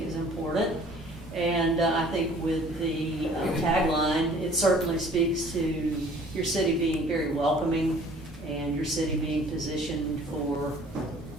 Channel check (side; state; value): both; normal; correlation 0.52